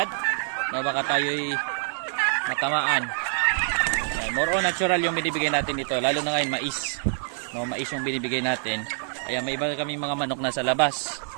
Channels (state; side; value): silent; left; 61 dB below the other